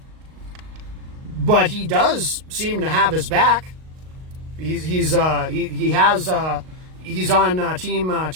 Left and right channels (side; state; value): left; late; 38 ms